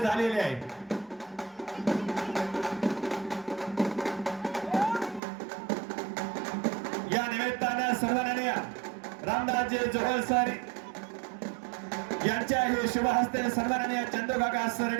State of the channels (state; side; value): drops out; left; at 5.2 s